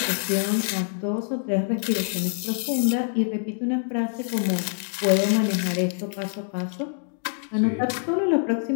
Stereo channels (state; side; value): silent; right; 62 dB below the other